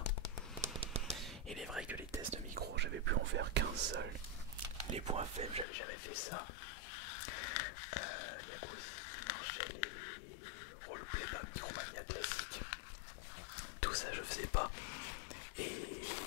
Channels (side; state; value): right; drops out; at 5.7 s